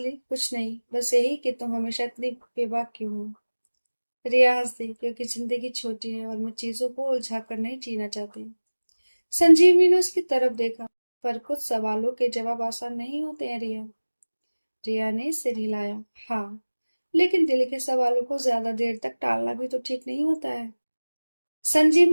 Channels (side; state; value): both; inverted; correlation -1.00